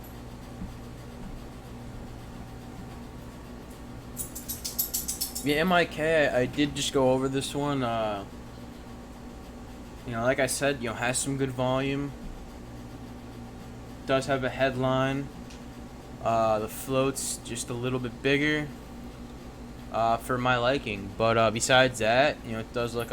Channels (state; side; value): identical; both; correlation 1.00